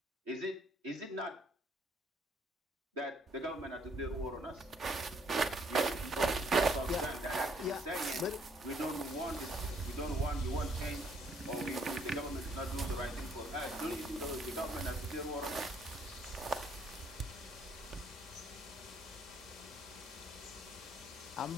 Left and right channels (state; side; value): normal; both; correlation 0.66